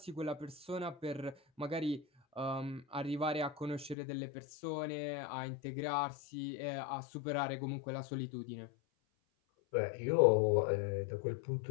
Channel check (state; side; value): drops out; right; at 4.0 s